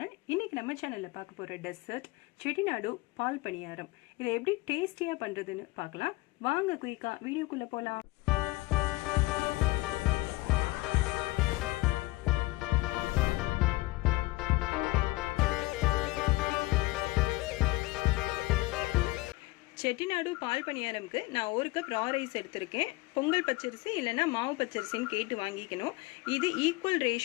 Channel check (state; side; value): quieter; right; 20.6 dB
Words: இன்னைக்கு நம்ம சேனல்ல பார்க்க போற டெசர்ட் செட்டிநாடு பால் பணியாரம். இதை எப்படி டேஸ்டியா பண்றதுன்னு பார்க்கலாம். வாங்க குயிக்கா வீடியோக்குள்ள போலாம். செட்டிநாடு பால் பணியாரம்க்கு நான் 1 கப் ரா ரைஸ் எடுத்திருக்கேன். பொங்கல் பச்சரிசி இல்லைன்னா மாவு பச்சரிசின்னு கேட்டு வாங்கிக்கணும். இது ஈக்குவல்